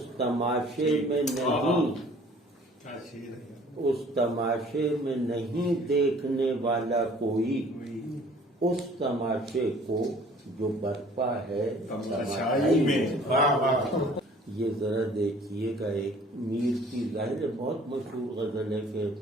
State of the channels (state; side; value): normal; both; correlation 0.52